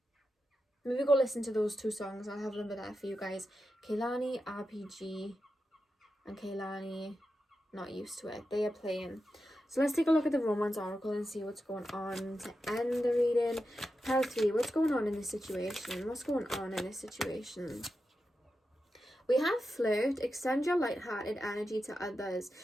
Maybe go listen to those two songs. I'll have them there for you guys. Kawaii RPG and Kawaii Not Used to It. They are playing. So let's take a look at the Romance Oracle and see what's going on to end the reading. Pile 3, what's going on in this situation? What's going on in this situation? We have flirt, extend your light-hearted energy to others.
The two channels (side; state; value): both; normal; correlation 0.89